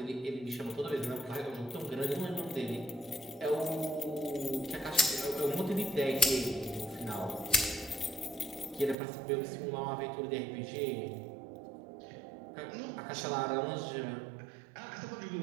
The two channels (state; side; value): drops out; left; at 9.0 s